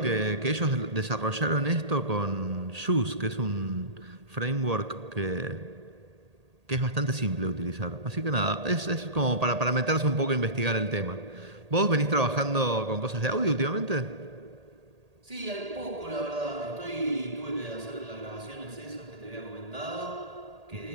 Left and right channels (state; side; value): late; left; 1.8 ms